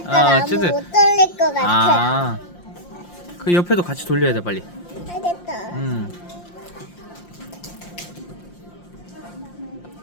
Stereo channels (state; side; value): late; right; 5.7 ms